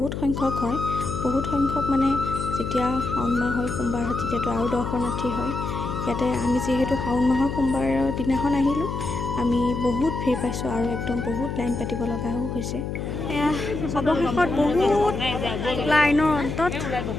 সংখ্যক হয়, বহুত সংখ্যক মানে যেতিয়া শাওণ মাহ হয় সোমবাৰ হয় তেতিয়াতো আৰু দৰ্শনাৰ্থী হয়। ইয়াতে আমি যিহেতু শাওণ মাহৰ সোমবাৰৰ দিনাখন আহিলোঁ, আমি বহুত ভিৰ পাইছোঁ আৰু একদম বহুত লাইন পাতিব লগাও হৈছে। এয়া অৱশেষত বহুত লাইনৰ অন্তত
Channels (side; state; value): left; noise; hum, 4 dB below the sound